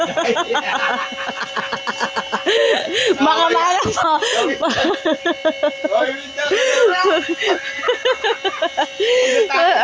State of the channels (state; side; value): identical; both; correlation 1.00